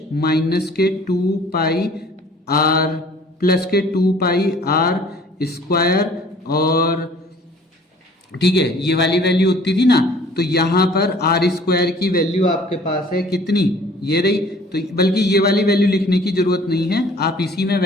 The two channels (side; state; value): both; normal; correlation 0.52